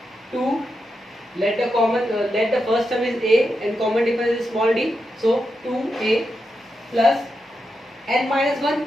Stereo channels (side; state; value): both; normal; correlation 0.86